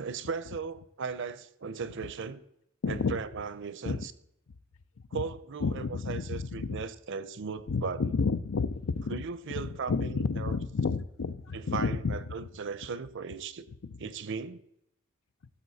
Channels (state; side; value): normal; both; correlation 0.36